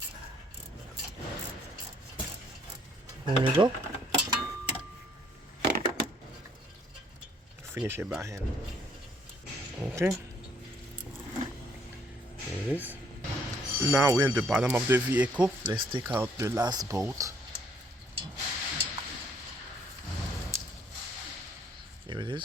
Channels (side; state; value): both; normal; correlation 0.65